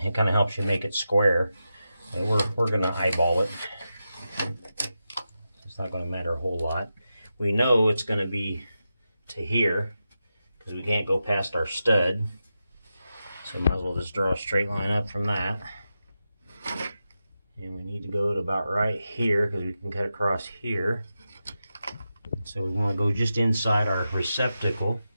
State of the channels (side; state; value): both; inverted; correlation -0.90